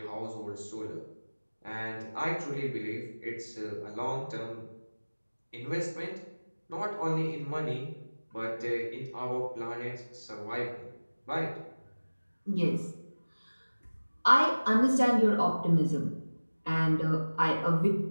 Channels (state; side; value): inverted; both; correlation -1.00